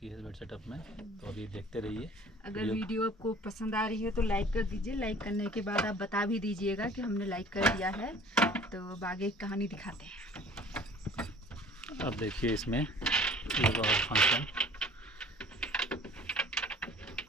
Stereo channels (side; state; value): both; normal; correlation 0.49